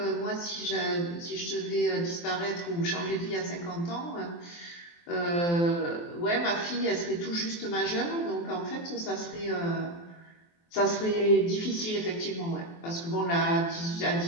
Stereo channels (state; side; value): late; right; 23 ms